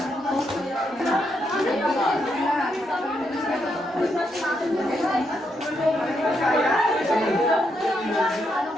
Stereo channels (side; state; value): both; normal; correlation 0.79